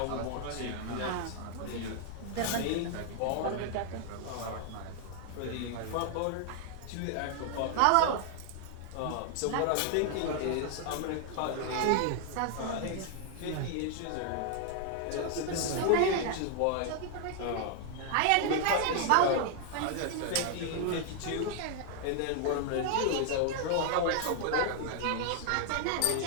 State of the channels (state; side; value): different; both; correlation 0.00